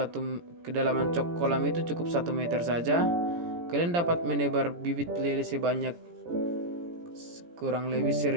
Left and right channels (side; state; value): left; late; 17 ms